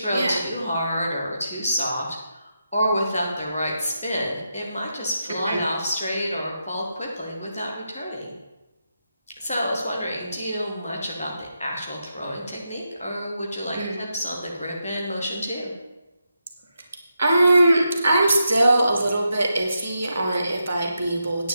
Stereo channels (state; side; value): inverted; both; correlation -0.85